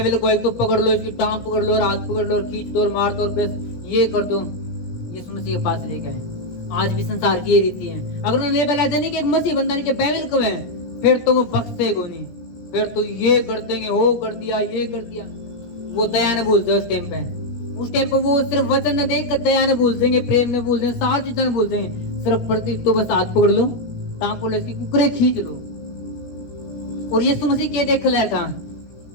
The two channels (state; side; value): late; right; 17 ms